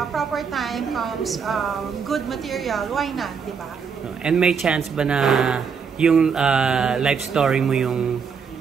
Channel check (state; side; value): quieter; left; 6.1 dB